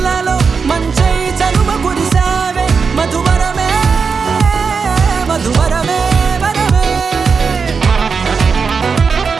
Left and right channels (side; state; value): left; quieter; 5.4 dB